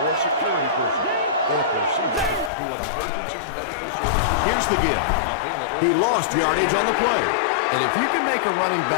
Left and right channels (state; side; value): drops out; right; at 2.5 s